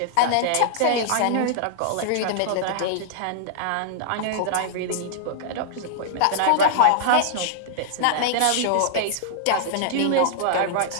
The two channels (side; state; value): both; different; correlation -0.01